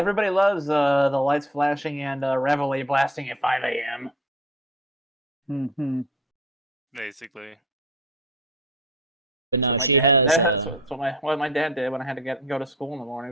loves the lights flashing and Reveille blasting at 5 a.m. Mm-hmm. Basically. but no, My she dad- has That's what my dad did when I had to go to school in the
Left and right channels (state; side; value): normal; both; correlation 0.44